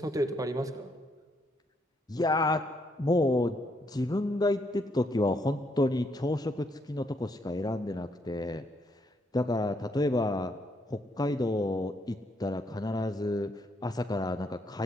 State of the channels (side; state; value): both; normal; correlation 0.74